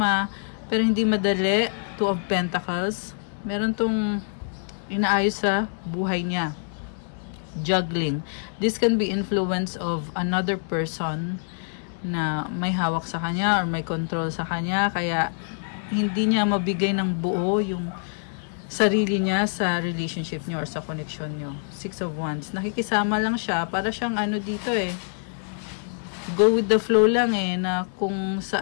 pero hindi madali. 2 of Pentacles. Meron tong inaayos sa buhay niya. Juggling. This can be influence of another person na may hawak sa kanya or may control sa kanya, kaya hindi niya mabigay ng buo yung sarili niya sa relationship niyo or sa connection niyo. 6 of Wands. Nakikisama lang siya, para siyang ano dito eh, go with the flow lang eh, na kung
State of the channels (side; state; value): right; silent; 61 dB below the other